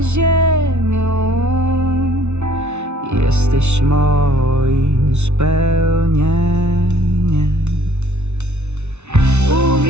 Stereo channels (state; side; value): late; left; 0.82 ms